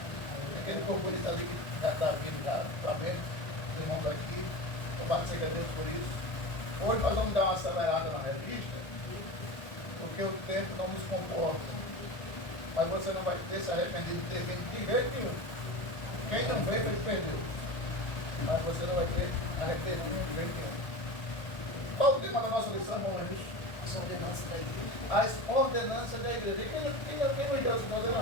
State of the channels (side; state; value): right; late; 1.4 ms